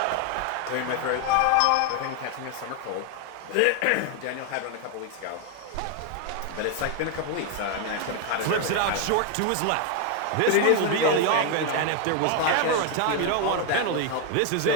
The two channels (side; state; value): both; different; correlation 0.01